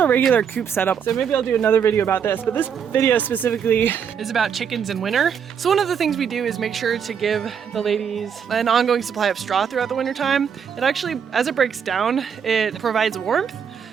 regular coop setup. So maybe I'll do another video about this, but this video specifically is about chickens in winter. So one of the things we do is make sure to give the ladies an ongoing supply of straw throughout the winter time. It actually, as it breaks down, it provides warmth.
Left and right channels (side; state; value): left; quieter; 7.4 dB